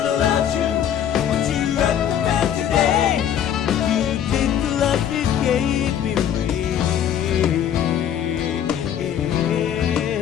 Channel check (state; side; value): quieter; right; 9.6 dB